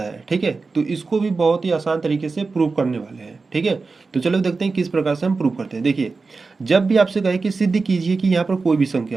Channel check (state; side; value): quieter; left; 4.2 dB